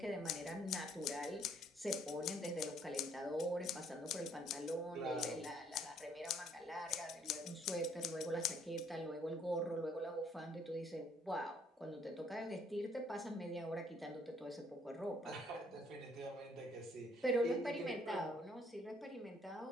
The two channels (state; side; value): normal; both; correlation 0.65